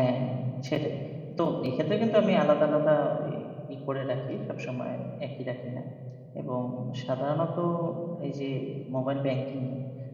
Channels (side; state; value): both; identical; correlation 1.00